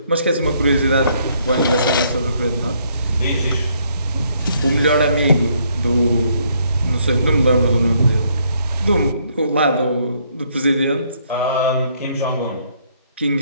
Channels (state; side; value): inverted; both; correlation -0.69